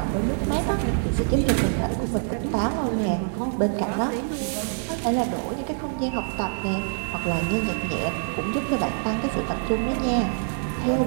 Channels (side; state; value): left; silent; digital silence